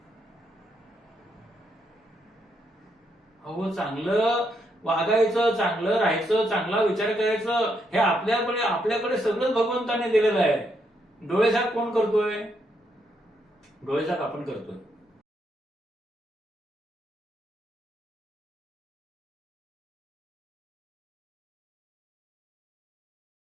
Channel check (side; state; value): both; normal; correlation 0.77